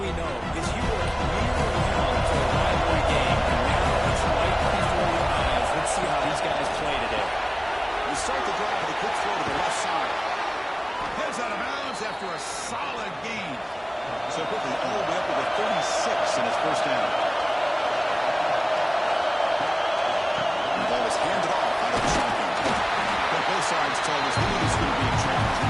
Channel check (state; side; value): identical; both; correlation 1.00